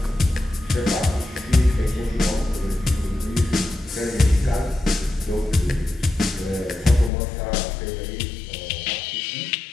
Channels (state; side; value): drops out; right; at 7.1 s